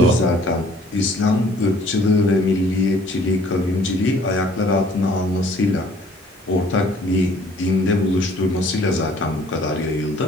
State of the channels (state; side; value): normal; both; correlation 0.57